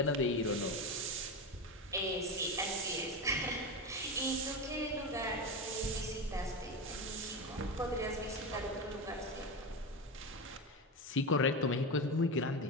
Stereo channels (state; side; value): normal; both; correlation 0.18